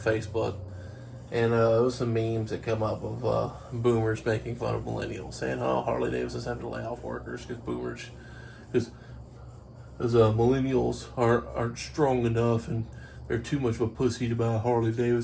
and there was some memes that come up of boomers making fun of millennials, saying, "Oh, Harley Davidson's having to lay off workers because millennials aren't strong enough and they're too much of a pussy to buy a Harley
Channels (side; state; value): both; identical; correlation 1.00